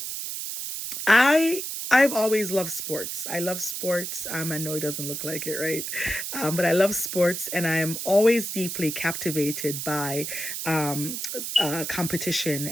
I've always loved sports. I love sports. I know it doesn't look like it, right? But I love sports, and I am always deeply captivated by competition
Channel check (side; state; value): right; noise; hiss, 5 dB below the sound